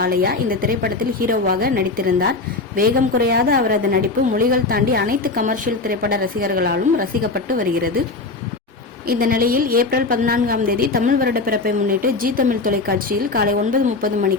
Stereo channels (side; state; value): right; quieter; 3.7 dB